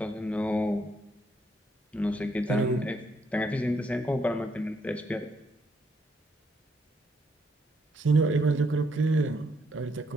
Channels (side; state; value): both; normal; correlation 0.74